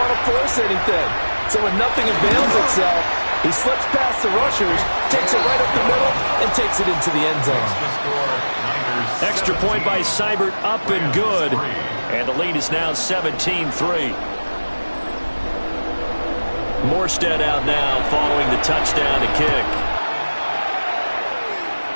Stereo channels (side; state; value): both; inverted; correlation -1.00